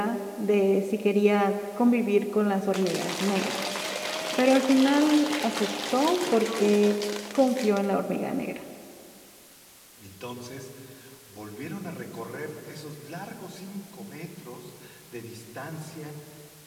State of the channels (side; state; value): both; identical; correlation 1.00